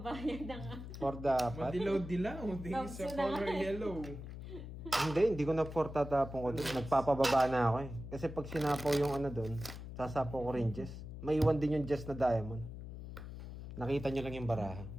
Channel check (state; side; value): noise; left; hum, 10 dB below the sound